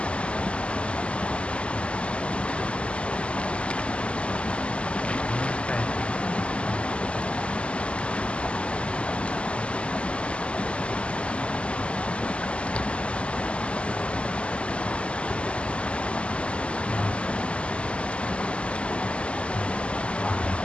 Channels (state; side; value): late; right; 0.056 ms